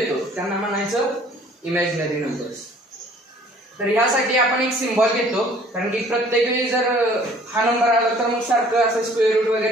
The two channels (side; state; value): both; normal; correlation 0.55